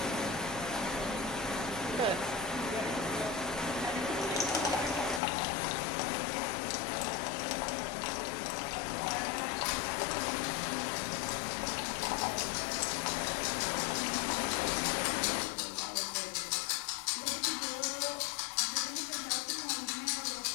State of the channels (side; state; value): right; drops out; at 5.2 s